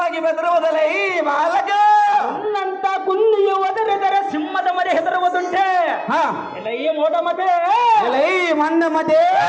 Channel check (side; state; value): both; identical; correlation 1.00